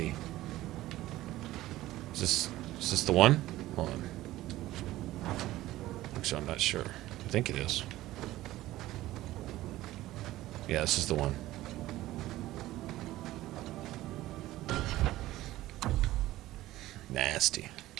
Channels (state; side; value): quieter; left; 16.1 dB